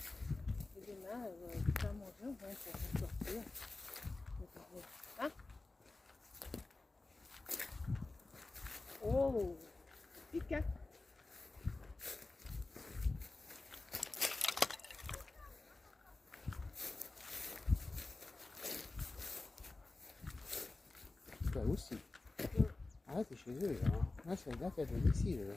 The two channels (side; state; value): right; quieter; 3.2 dB